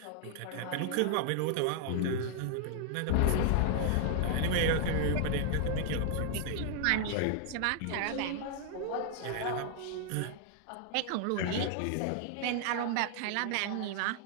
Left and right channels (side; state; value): both; different; correlation 0.00